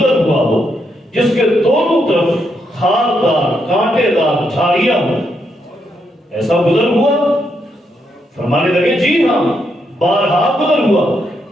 ہوا ہو جس کے دونوں طرف خاردار کانٹے دار جھاڑیاں ہوں، ایسا گزر ہوا؟ فرمانے لگے جی ہاں، بارہا گزر ہوا۔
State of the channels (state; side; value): normal; both; correlation 0.79